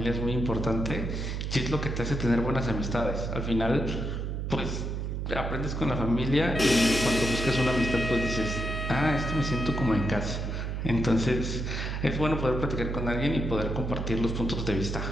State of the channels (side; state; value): right; noise; hum, 3 dB below the sound